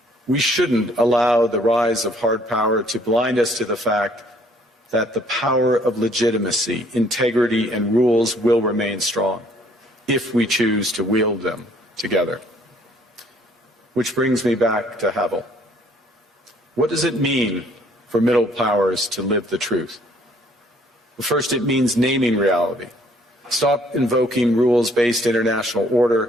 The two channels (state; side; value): normal; both; correlation 0.61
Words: We shouldn't allow the rise of hard power to blind us to the fact that the power of legitimacy, integrity, and rules will remain strong if we choose to wield them together. Which brings me back to Havel. What does it mean for middle powers to live the truth? Well, first, it means naming reality. Stop invoking rules-based international